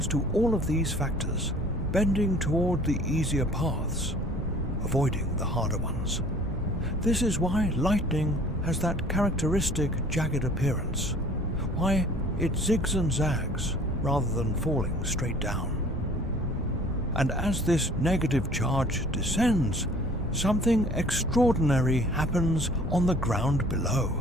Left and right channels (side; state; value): both; normal; correlation 0.51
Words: to all of these factors, bending toward the easier paths, avoiding the harder ones. This is why lightning has that characteristic jagged appearance, why it zigs and zags rather than falling straight down. And as this negative charge descends, something extraordinary happens on the ground